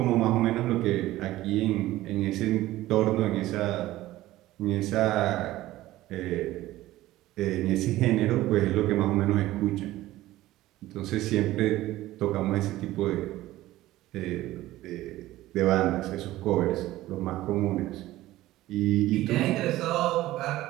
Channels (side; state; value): left; quieter; 16.1 dB